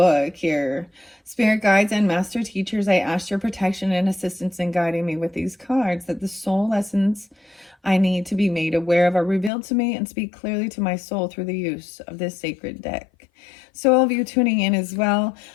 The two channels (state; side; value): drops out; right; at 9.5 s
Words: here. Spirit guides and master teachers, I asked your protection and assistance in guiding me with these cards, that the soul lessons I need to be made aware of are revealed to me and speak clearly to my soul through the use of this sacred deck. So all of you tuning in as well.